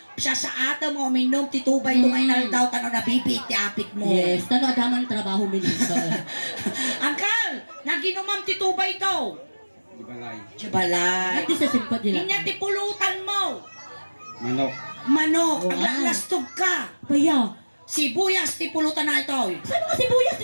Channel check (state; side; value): inverted; both; correlation -1.00